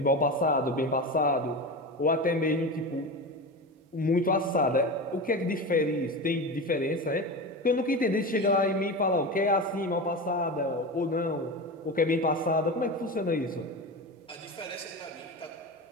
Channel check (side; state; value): both; normal; correlation 0.24